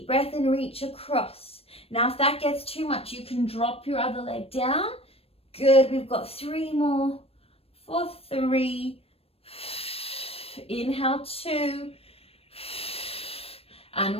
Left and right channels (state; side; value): late; right; 0.28 ms